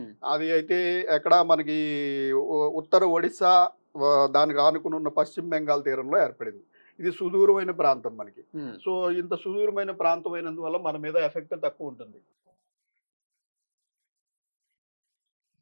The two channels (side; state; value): both; inverted; correlation -1.00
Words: అది అయితే ఎక్కడ మనకి ఉత్తర ఒడిశా దానికి ఆనుకుని ఉన్న పశ్చిమ బెంగాల్ తీరంలో ఏర్పడింది. ఇది సుదూరమైన ప్రాంతం మనకి. సో ఇంత సుదూరమైన ప్రాంతం అయినందువల్ల మన మీద ఎఫెక్ట్ తక్కువ ఉంటుంది. సో మనకి ఈ మాన్సూన్ సమయంలో ఇలాంటి